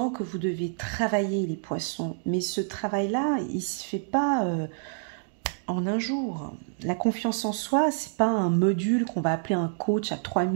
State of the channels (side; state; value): left; silent; digital silence